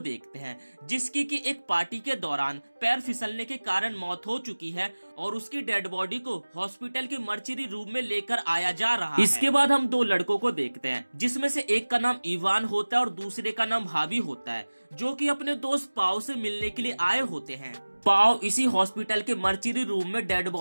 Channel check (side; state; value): both; inverted; correlation -1.00